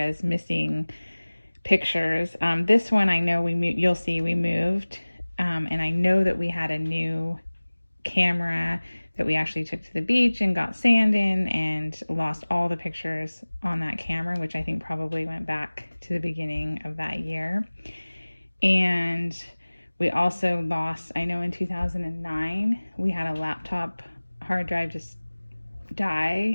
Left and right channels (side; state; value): both; inverted; correlation -1.00